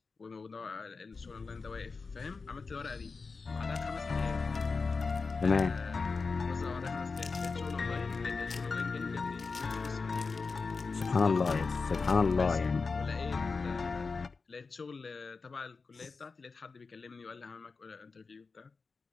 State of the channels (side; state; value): right; quieter; 4.5 dB